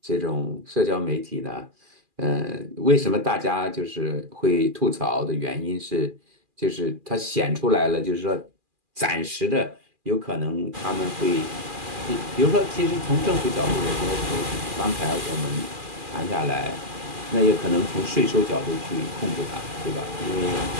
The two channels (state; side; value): late; left; 2.4 ms